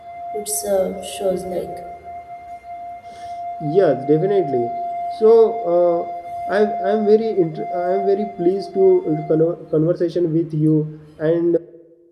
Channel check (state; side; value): identical; both; correlation 1.00